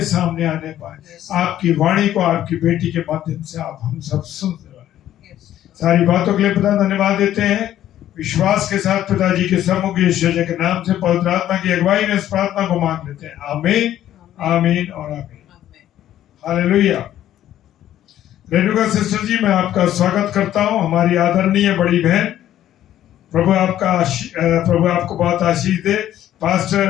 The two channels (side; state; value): right; quieter; 12.1 dB